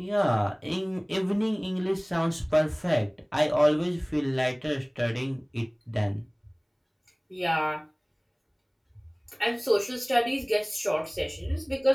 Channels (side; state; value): both; identical; correlation 1.00